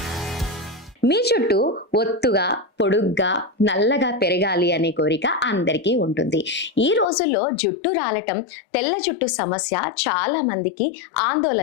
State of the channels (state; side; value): drops out; right; at 7.1 s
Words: మీ చుట్టూ ఒత్తుగా, పొడుగ్గా, నల్లగా పెరగాలి అనే కోరిక అందరికీ ఉంటుంది. ఈ రోజుల్లో జుట్టు రాలటం, తెల్ల జుట్టు సమస్య చాలా మందికి